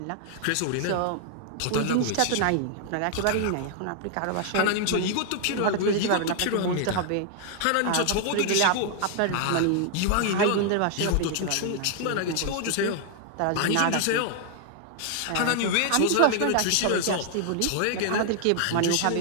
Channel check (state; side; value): different; both; correlation 0.00